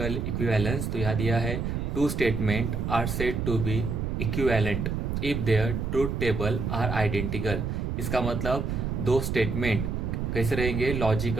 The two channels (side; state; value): right; noise; rumble, 2 dB below the sound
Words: इक्विवेलेंस। तो यहाँ दिया है two statement are said to be equivalent if their truth table are identical. इसका मतलब दो स्टेटमेंट कैसे रहेंगे,